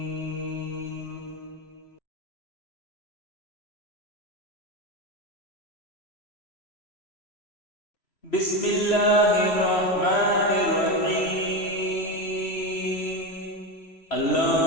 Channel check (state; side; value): late; right; 3.0 ms